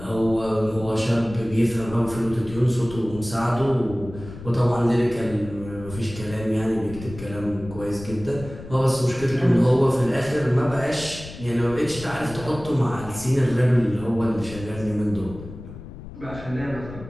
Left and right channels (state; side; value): noise; left; rumble, 14 dB below the sound